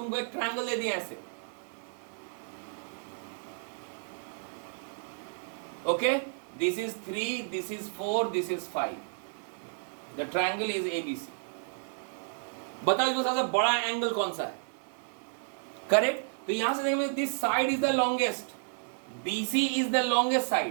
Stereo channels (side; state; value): left; silent; 57 dB below the other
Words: एक ट्रायंगल दे दिया ऐसे, okay, this is 3, this is 4, this is 5, the triangle is ABC। बताओ इसमें सबसे बड़ा एंगल कौन सा है। करेक्ट, तो यहां से देखो this side is the longest, BC is the longest